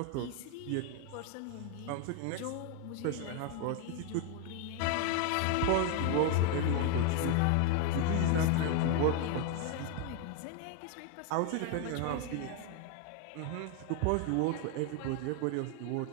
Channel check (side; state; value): both; different; correlation 0.01